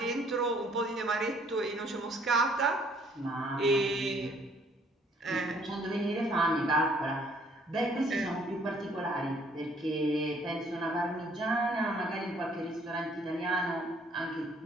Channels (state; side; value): normal; both; correlation 0.62